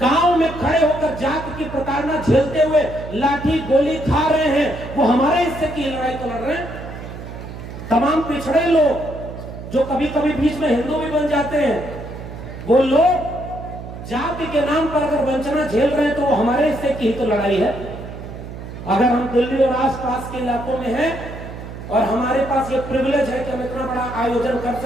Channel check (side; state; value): right; noise; hum, 11 dB below the sound